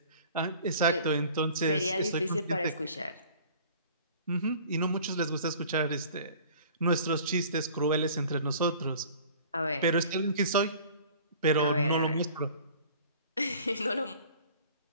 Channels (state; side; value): inverted; both; correlation -0.48